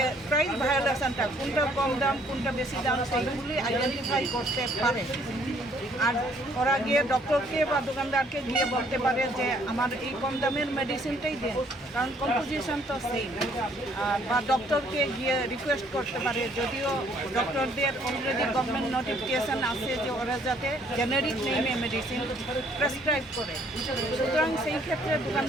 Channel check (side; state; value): both; normal; correlation 0.63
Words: প্রাইস ভায়োলেশনটা কোনটা কম দাম কোনটা বেশি দাম সেইগুলি আইডেন্টিফাই করতে পারে। আর ওরা গিয়ে ডক্টরকে বা দোকানদারকে গিয়ে বলতে পারে যে আমার এই কম দামের মেডিসিনটাই দেন, কারণ কম্পোজিশন তো সেম। বা ডক্টরকে গিয়ে রিকোয়েস্ট করতে পারে, যদিও ডক্টরদের অলরেডি গভর্নমেন্ট নোটিফিকেশান আছে যে ওরা যাতে জেনারিক নেমে মেডিসিন প্রেসক্রাইব করে। সুতরাং সেই ক্ষেত্রে